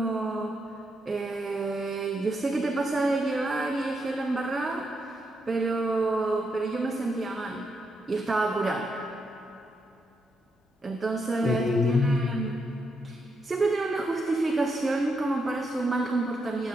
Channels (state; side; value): normal; both; correlation 0.81